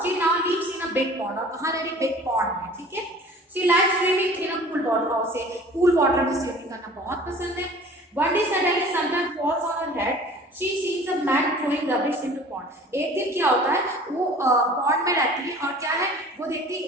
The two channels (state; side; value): normal; both; correlation 0.46